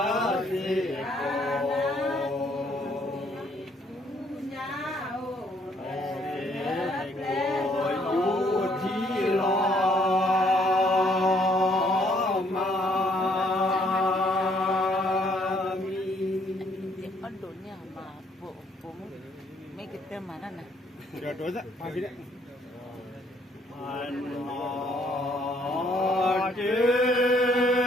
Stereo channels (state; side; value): normal; both; correlation 0.66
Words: mấy cái tên mà đó nè rồi đối ra hai cái đấy